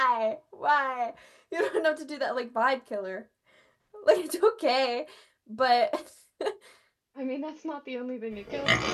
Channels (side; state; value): both; identical; correlation 1.00